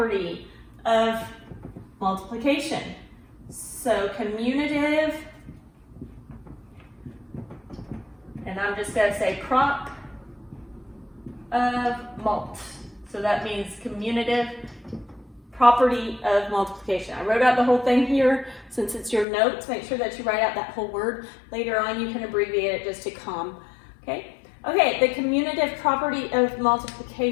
of multiplication. So commutative, and I'm just going to say prop of mult. So that means commutative property of multiplication. I wrote out the whole thing here. Since it's your notes, make sure that you write out that whole word. Later on, you can abbreviate it just to COM. Okay? Okay, the commutative property of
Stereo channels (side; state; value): right; drops out; at 19.2 s